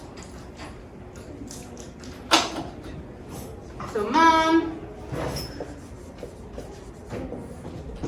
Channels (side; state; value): both; identical; correlation 1.00